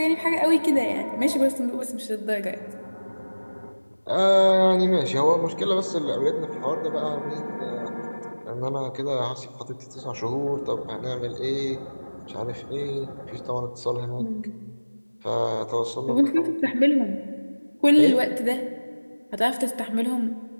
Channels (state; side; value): inverted; both; correlation -1.00